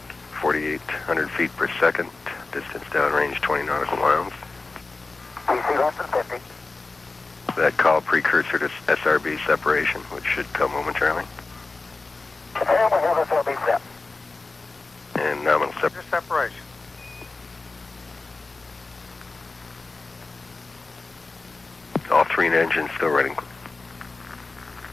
4,800 feet per second. Distance downrange 20 nautical miles. PC less than 50. That call precursor to SRB separation, which should come momentarily. And we have SRB set. And nominal Separation. All three engines still running.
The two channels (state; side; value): quieter; right; 3.7 dB